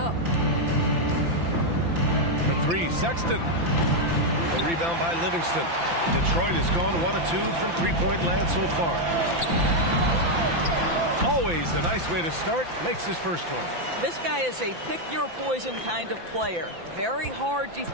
For 3, Sexton. The rebound by Livingston. Detroit has gone 1 of 2 from 3-point land so far. Always a nice way to start. Makes his first one. This guy is a pick-your-poison kind of player. Very hard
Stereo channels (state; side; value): late; left; 5.9 ms